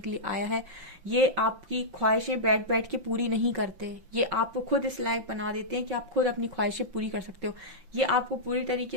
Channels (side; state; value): left; late; 5.8 ms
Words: लिए आया है। ये आपकी ख्वाहिशें बैठ बैठ के पूरी नहीं करते, ये आपको खुद इस लायक बना देते हैं कि आप खुद अपनी ख्वाहिशें पूरी कर सकते हो। ये आपको पूरी